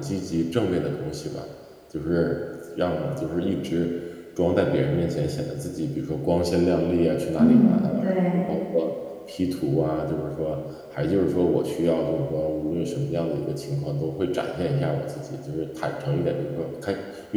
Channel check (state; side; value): identical; both; correlation 1.00